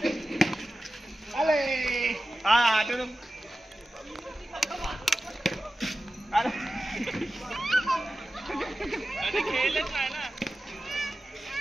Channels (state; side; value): normal; both; correlation 0.94